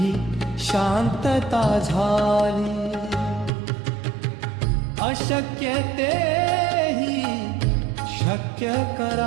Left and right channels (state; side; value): drops out; left; at 3.5 s